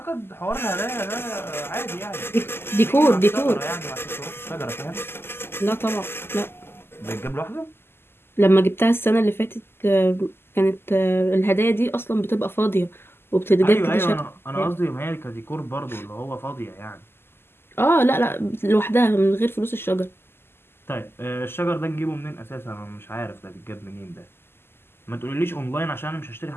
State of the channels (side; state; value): right; late; 0.11 ms